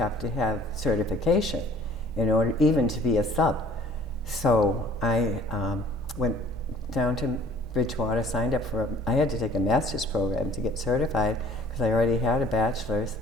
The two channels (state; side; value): normal; both; correlation 0.54